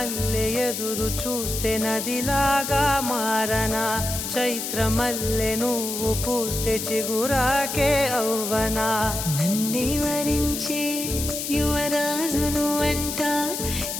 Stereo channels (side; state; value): left; noise; hiss, 4 dB below the sound